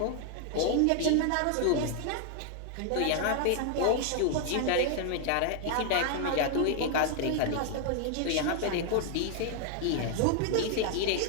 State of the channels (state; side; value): different; both; correlation 0.00